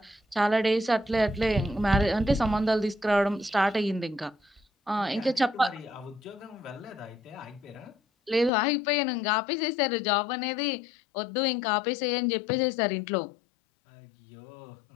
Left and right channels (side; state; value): right; drops out; at 8.5 s